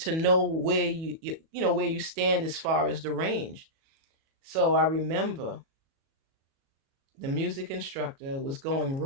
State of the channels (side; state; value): left; late; 37 ms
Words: know where where you stand as far as the range. So I remember the music instructor was going